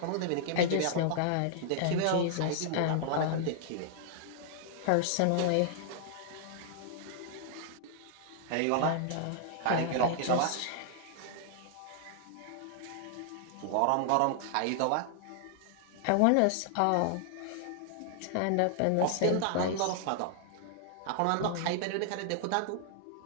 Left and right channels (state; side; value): different; both; correlation -0.01